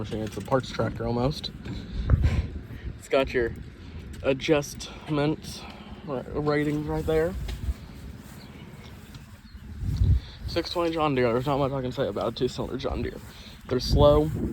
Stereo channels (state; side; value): identical; both; correlation 1.00